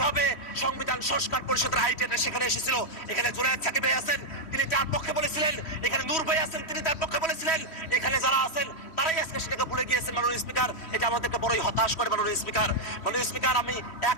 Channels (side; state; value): right; late; 3.1 ms